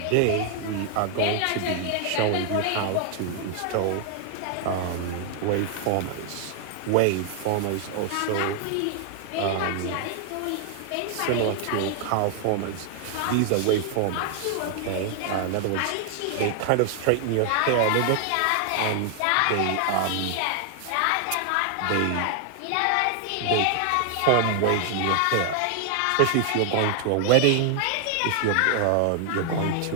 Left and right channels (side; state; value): both; different; correlation 0.00